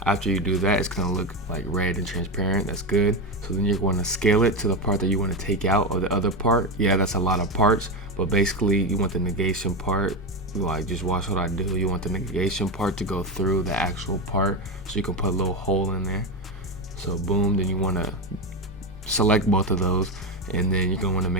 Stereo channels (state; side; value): normal; both; correlation 0.15